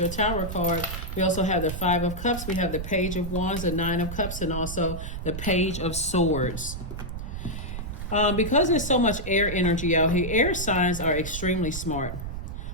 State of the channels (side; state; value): right; noise; rumble, 6 dB below the sound